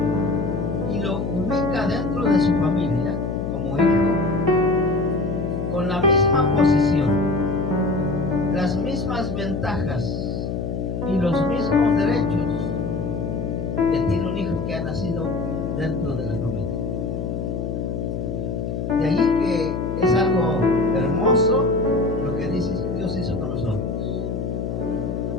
y lo ubica dentro de su familia como hijo, con la misma posición, las mismas ventajas y los mismos derechos que tiene un hijo que ha nacido dentro de la familia. De ahí que es algo hermoso lo que Dios hizo con nosotros.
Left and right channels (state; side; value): noise; left; hum, 3 dB below the sound